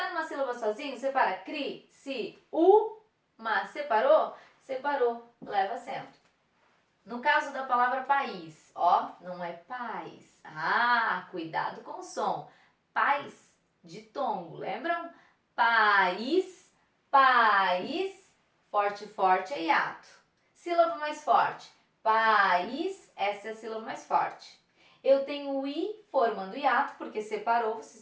numa sílaba sozinho? Separa. Cri, si, u, mas separou? Separou. Leva acento. No caso da palavra país, ó, não é paz. Ah, cuidado com o som. Paz de tongo, lembram? País, país, forte, forte é hiato. Sílaba mais forte. País, essa é a sílaba mais forte. Eu tenho o i formando hiato, porque separou, vocês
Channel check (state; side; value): identical; both; correlation 1.00